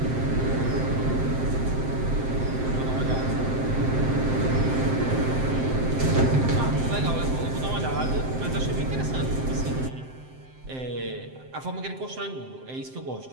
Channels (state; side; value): late; left; 7.7 ms